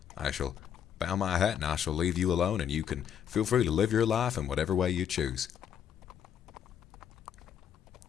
I shall bow my hat and I shall leave you alone, and you can feel free to live your life in whatever way you choose.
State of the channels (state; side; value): quieter; right; 8.9 dB